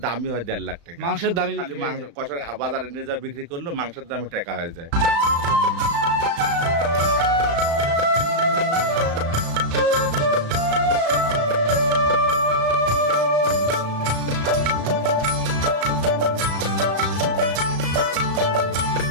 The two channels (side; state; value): left; late; 35 ms